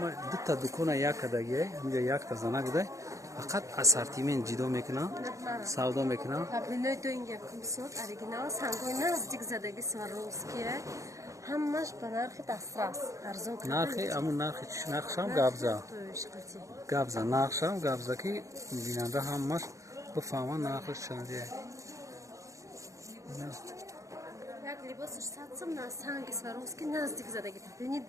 дута дукона як кадагия ҳамҷа якта зана гудай фақат ассортимент ҷидо мекунам, савдо мекунам. Паплиной доинга кумсот оригинал сангой наздик задаги Сваровские. Ҳамаш ба нархи дастрас арзон карда. Нархи амун нархи нархшам габза. Габза нархшам габза ки бинанда ҳамаш бифаҳма нархиш чандие. Як либосиш 100 сом на санги Сваровский наздик задаги паплини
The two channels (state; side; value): late; left; 0.15 ms